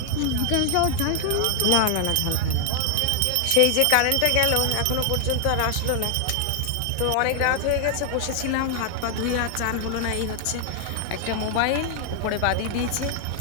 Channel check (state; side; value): different; both; correlation 0.00